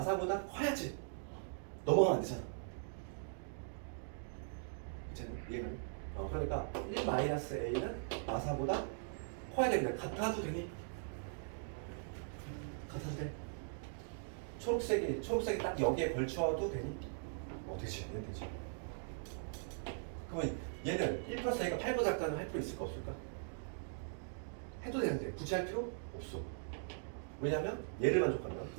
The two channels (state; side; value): silent; left; digital silence